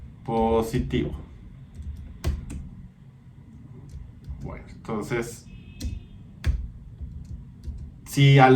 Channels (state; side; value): identical; both; correlation 1.00